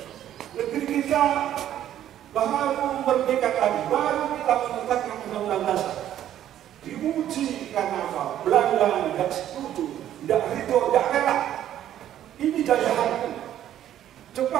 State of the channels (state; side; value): quieter; left; 11.5 dB